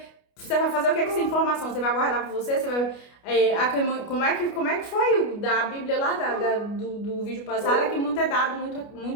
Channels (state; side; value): late; right; 29 ms